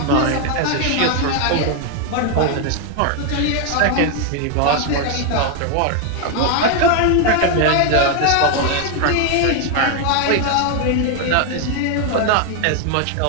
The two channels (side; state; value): both; different; correlation 0.01